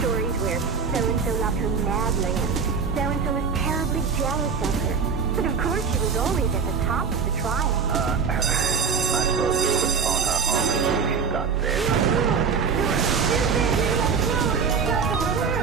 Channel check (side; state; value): left; quieter; 5.7 dB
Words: where so-and-so loved her madly and so-and-so was terribly jealous of her. But of course she was always at the top of the trial. I suppose we could phone her home as soon as she got there.